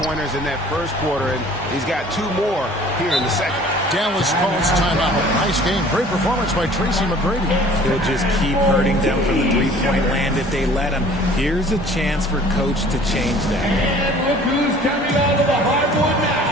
in that first quarter, and he's got 2 more here in the second. Dallas calls timeout. Nice game. Great performance by Tracy McGrady. He'll just keep hurting them from the three-point land if they let him. Here's a chance for Coach to change that. And look who's coming onto the hardwood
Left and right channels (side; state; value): both; normal; correlation 0.50